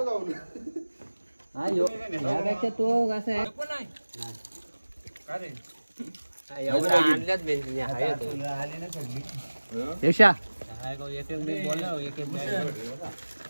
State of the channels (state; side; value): inverted; both; correlation -1.00